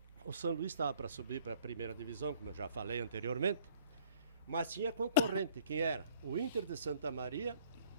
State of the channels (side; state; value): both; inverted; correlation -0.57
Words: o São Luís estava para subir para a primeira divisão, como eu já falei anteriormente, mas tinha concorrente. Quem era? O Inter de Santa Maria,